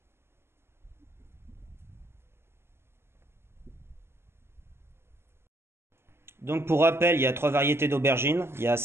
Donc pour rappel, il y a trois variétés d'aubergines, il y a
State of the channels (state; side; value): late; left; 0.12 ms